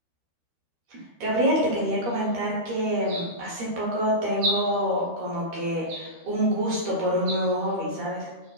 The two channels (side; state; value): left; late; 13 ms